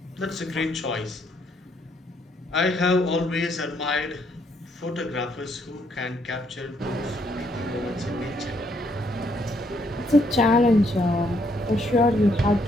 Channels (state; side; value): normal; both; correlation 0.71